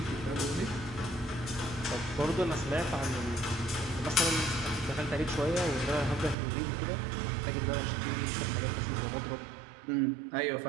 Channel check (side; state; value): left; drops out; at 6.4 s